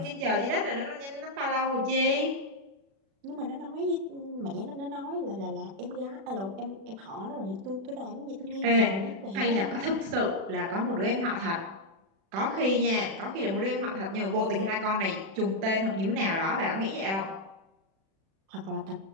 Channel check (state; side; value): late; left; 36 ms